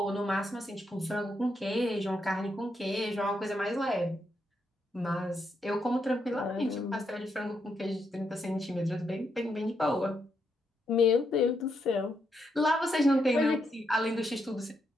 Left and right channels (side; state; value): both; normal; correlation 0.80